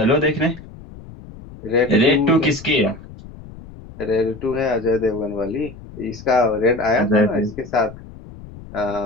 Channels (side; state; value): left; noise; rumble, 17 dB below the sound